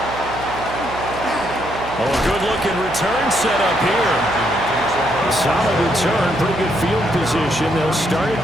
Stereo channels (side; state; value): right; noise; hum, 13 dB below the sound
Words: Oh, a good-looking return set up here. Solid return, pretty good field position. They'll start at